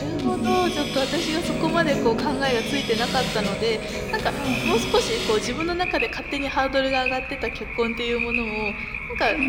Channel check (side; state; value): both; identical; correlation 1.00